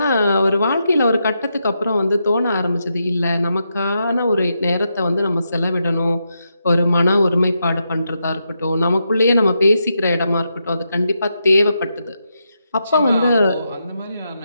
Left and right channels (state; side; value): inverted; both; correlation -0.84